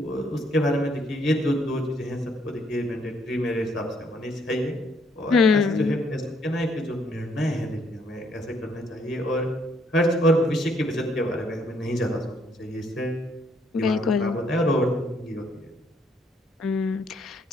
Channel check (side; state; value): both; normal; correlation 0.69